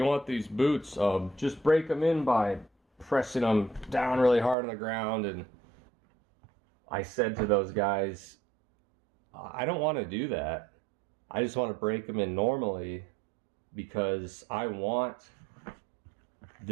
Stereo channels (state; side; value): drops out; left; at 4.5 s